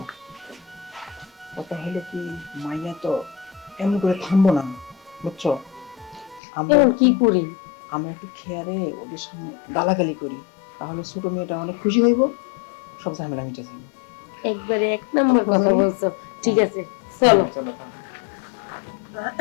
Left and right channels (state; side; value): drops out; right; at 6.4 s